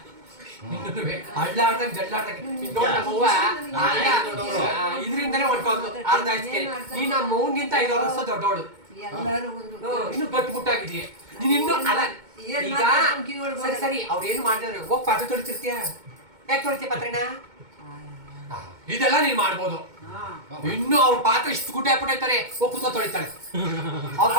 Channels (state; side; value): late; left; 2.2 ms